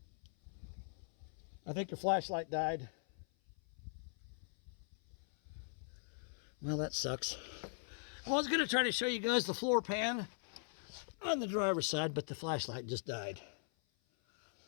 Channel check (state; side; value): silent; right; 51 dB below the other